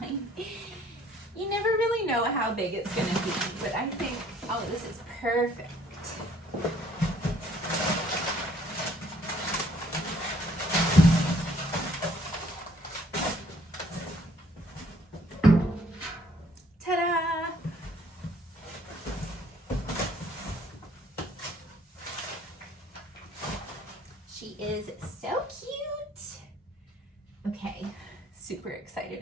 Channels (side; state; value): both; normal; correlation 0.61